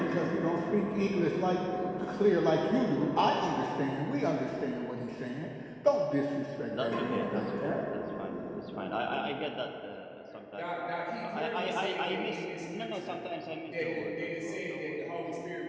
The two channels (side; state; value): both; identical; correlation 1.00